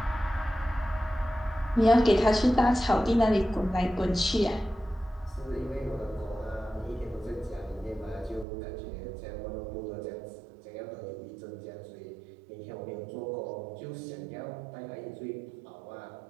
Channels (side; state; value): left; drops out; at 8.5 s